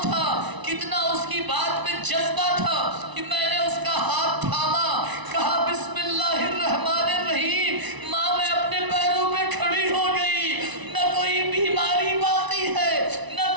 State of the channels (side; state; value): left; late; 1.0 ms